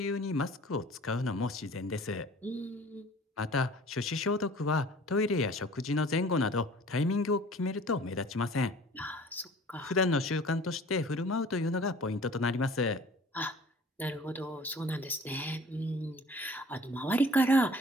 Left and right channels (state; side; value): normal; both; correlation 0.48